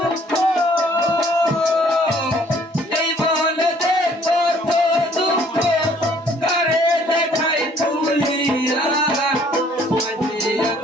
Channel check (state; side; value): normal; both; correlation 0.60